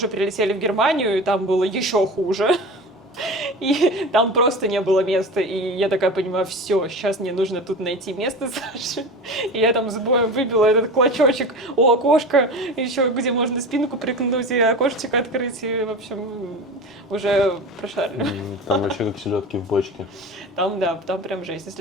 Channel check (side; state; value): both; normal; correlation 0.31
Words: прилетели в Германию, и там было еще хуже, И там просто не было места. И я такая понимаю, все, сейчас мне нужно тут найти место Саши. И я там с боем выбила этот клочочек у окошка, еще где можно спинку прикнуть и окошечко открыть. И, в общем, уже прошарили. Там вообще как селедки в бочке. Там, да, там прям жесть.